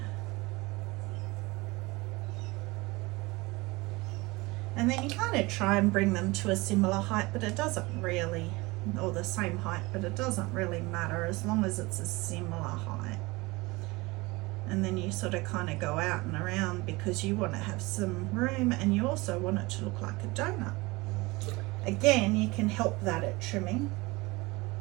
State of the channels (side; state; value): left; quieter; 23.0 dB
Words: And then you kind of try and bring them to a similar height, but it doesn't really, or the same height, but it doesn't really matter as long as it's a similar height. And then you sort of kind of go out and around because you want to have some room and you also want it to look like a donut. Again, you can help that at trimming.